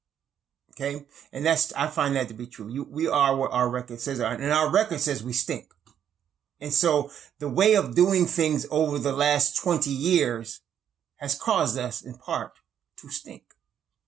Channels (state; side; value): quieter; left; 9.3 dB